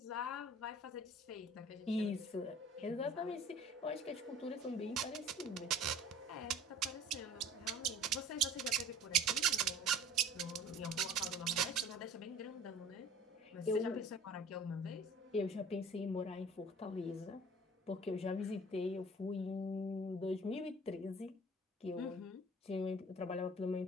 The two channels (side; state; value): both; normal; correlation 0.47